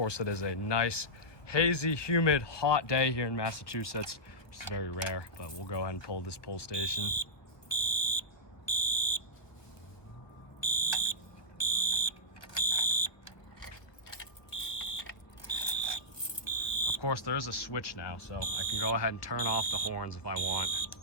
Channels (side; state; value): right; late; 1.4 ms